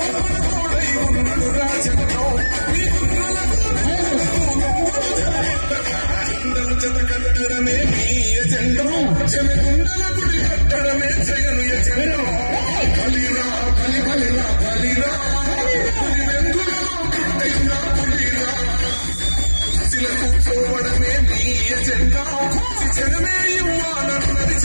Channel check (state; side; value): inverted; both; correlation -1.00